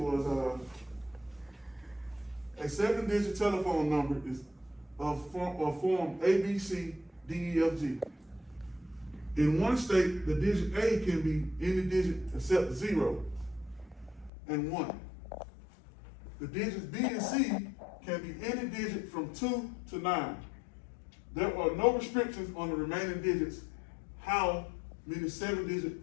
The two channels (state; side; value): drops out; right; at 14.3 s